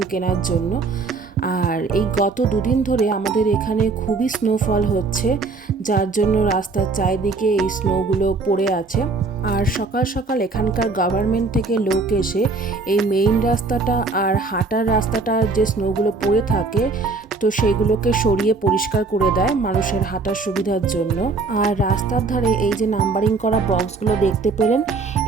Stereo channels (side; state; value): left; quieter; 4.0 dB